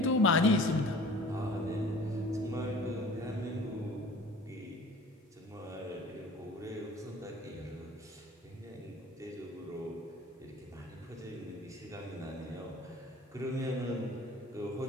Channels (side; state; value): both; normal; correlation 0.46